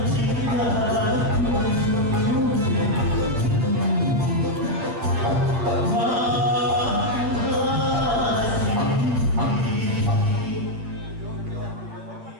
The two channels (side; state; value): left; late; 9.0 ms